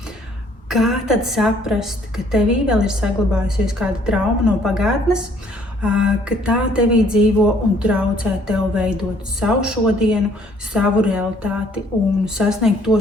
kā tad saprast, ka tevī vēl ir saglabājusies kāda trauma no pagātnes, ka tā tevī dzīvo un traucē tev veidot savu šodienu, savu realitāti un sasniegt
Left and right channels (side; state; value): both; normal; correlation 0.62